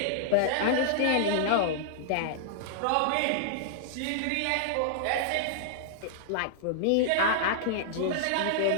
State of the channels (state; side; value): different; both; correlation -0.01